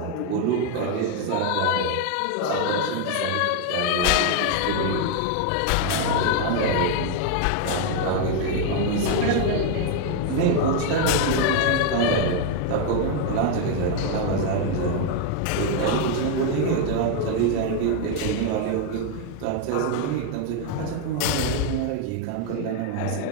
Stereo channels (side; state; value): both; different; correlation 0.01